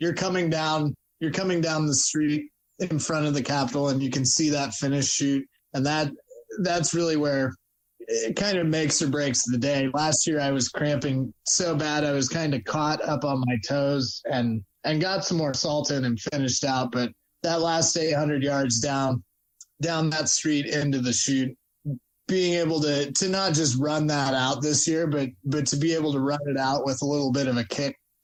coming down the street in front of the Capitol and you can see that finish chute. And that's really where it kind of makes or breaks the day. Last year I was cramping so bad. I was kind of caught up on my toes and got some more salt in and finished out. But that last 800 yards down that street into the chute, being able to not just run that out this year, but to be able to run it out with a little bit of a kick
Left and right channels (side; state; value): both; identical; correlation 1.00